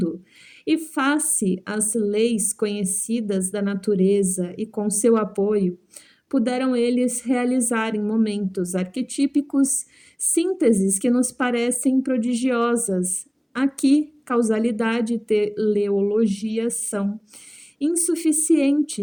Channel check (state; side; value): identical; both; correlation 1.00